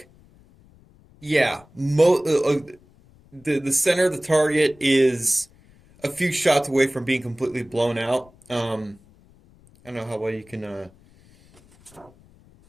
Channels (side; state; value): left; noise; rumble, 28 dB below the sound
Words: yeah, the center of the target is a few shots away from being completely blown out. I don't know how well you can...